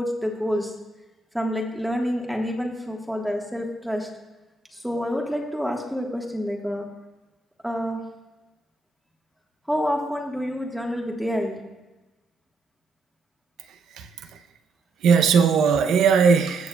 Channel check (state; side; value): quieter; left; 3.5 dB